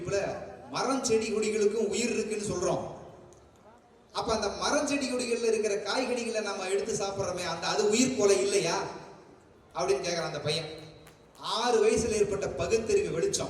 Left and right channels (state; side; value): identical; both; correlation 1.00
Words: மரம் செடி கொடிகளுக்கும் உயிர் இருக்குன்னு சொல்றோம். அப்ப அந்த மரம் செடி கொடிகள்ல இருக்கிற காய்கறிகளை நம்ம எடுத்து சாப்பிடுறோமே, அது உயிர் கொலை இல்லையா அப்படின்னு கேட்கிறான் அந்த பையன். 6 வயசுல ஏற்பட்ட பகுத்தறிவு